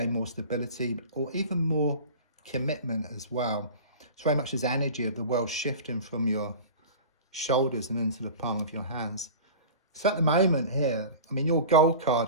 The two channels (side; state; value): both; inverted; correlation -0.36